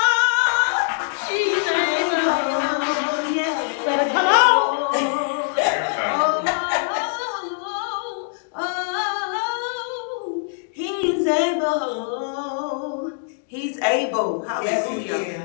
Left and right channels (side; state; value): right; silent; digital silence